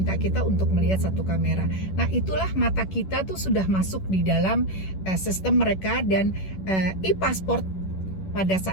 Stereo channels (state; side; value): late; right; 11 ms